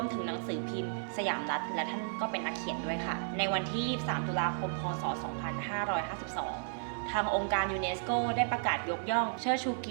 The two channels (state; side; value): silent; left; digital silence